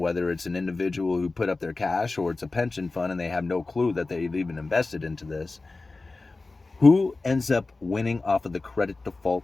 it's an individual who put up their cash or it's a pension fund and they have no clue that they've even invested into this, who ends up winning off of the credit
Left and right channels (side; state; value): right; quieter; 3.5 dB